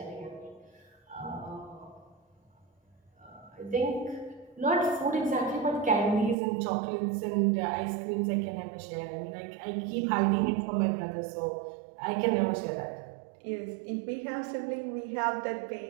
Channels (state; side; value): drops out; left; at 6.4 s